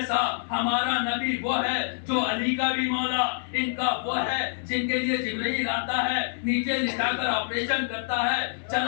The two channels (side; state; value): right; silent; digital silence